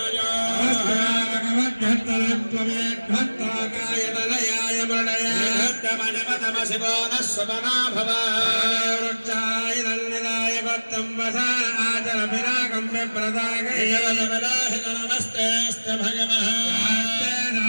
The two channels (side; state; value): both; inverted; correlation -1.00